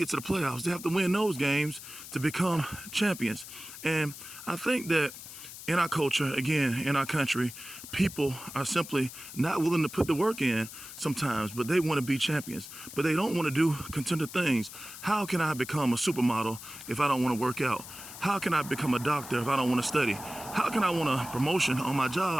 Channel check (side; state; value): left; noise; hiss, 13 dB below the sound